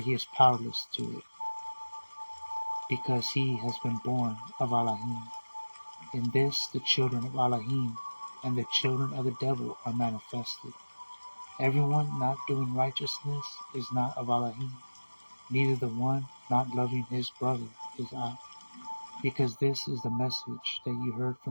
is powerless to it, because he has been born of ALAHYM. In this the children of ALAHYM and the children of the devil are manifested. Everyone not doing righteousness is not of ALAHYM, neither the one not loving his brother is of. Because this is the message that you heard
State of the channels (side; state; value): both; inverted; correlation -1.00